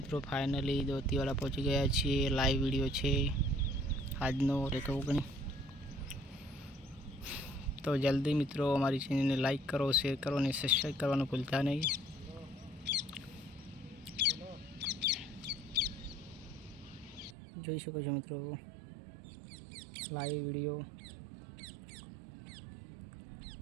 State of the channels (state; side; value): drops out; left; at 17.4 s